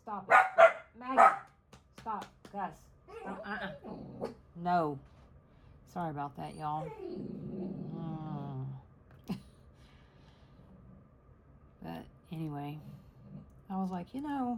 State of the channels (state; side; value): identical; both; correlation 1.00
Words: it. Maggie, stop. Gus, stop. No. Sorry about that, y'all. But anyway, I was like, you